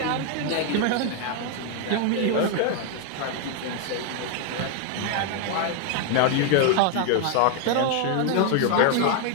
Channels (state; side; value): different; both; correlation 0.00